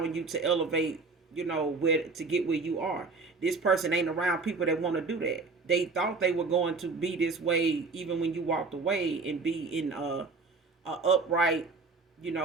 you to elevate, where to get where you are. This person ain't around people that want to do that. They thought they were going to be this way even when you walked away and be in a upright,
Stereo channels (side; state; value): left; quieter; 4.2 dB